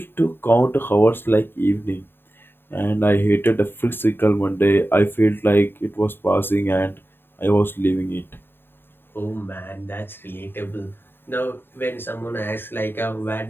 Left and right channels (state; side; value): late; right; 0.10 ms